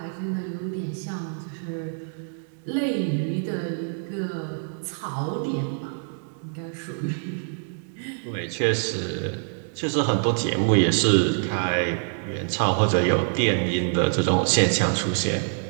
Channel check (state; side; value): silent; left; 61 dB below the other